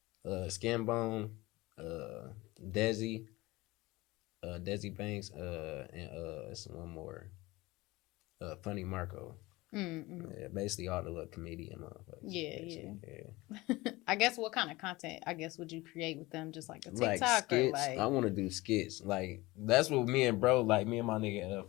Skinbone, Desi Banks, and it's one more, Funny Marco. Yeah, basically all the little comedian motherfuckers. Yeah. I guess what kind of content would you create with them? Just like a TikTok like skits. or I want to do skits. Like that's what me and my nigga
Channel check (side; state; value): right; quieter; 20.7 dB